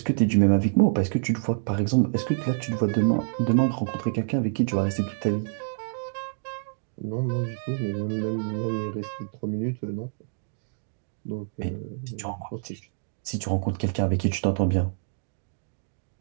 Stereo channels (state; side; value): silent; left; digital silence